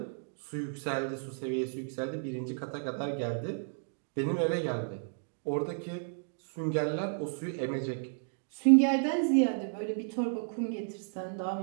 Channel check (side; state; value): left; silent; digital silence